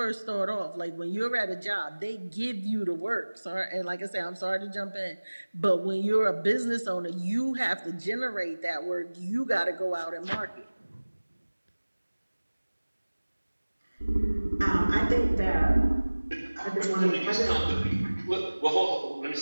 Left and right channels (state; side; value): inverted; both; correlation -1.00